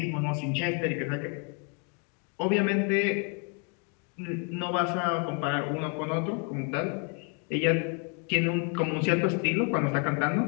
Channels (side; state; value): right; quieter; 38.2 dB